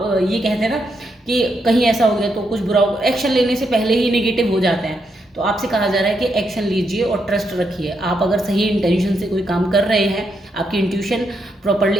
ये कहते हैं ना कि कहीं ऐसा हो गया तो कुछ बुरा हो, एक्शन लेने से पहले ही नेगेटिव हो जाते हैं। तो आपसे कहा जा रहा है कि एक्शन लीजिए और ट्रस्ट रखिए। आप अगर सही इंटेंशन से कोई काम कर रहे हैं, आपकी इंट्यूशन प्रॉपर्ली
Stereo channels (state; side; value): normal; both; correlation 0.80